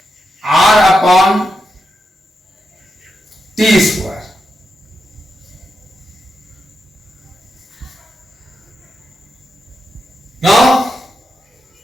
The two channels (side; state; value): both; normal; correlation 0.86